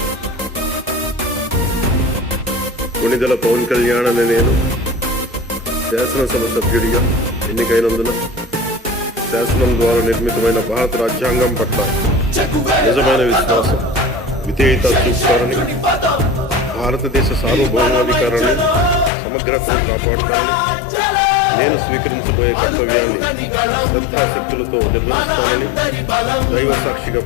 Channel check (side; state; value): right; drops out; at 19.1 s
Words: కొణిదెల పవన్ కళ్యాణ్ అనే నేను శాసనసభ సభ్యుడిగా ఎన్నికైనందున శాసనం ద్వారా నిర్మితమైన భారత రాజ్యాంగం పట్ల నిజమైన విశ్వాసం, విధేయత చూపుతారని, భారతదేశ సార్వభౌమాధికారాన్ని, సమగ్రతను కాపాడుతానని, నేను స్వీకరించబోయే కర్తవ్యాన్ని శ్రద్ధాశక్తులతో నిర్వహిస్తానని దైవ సాక్షిగా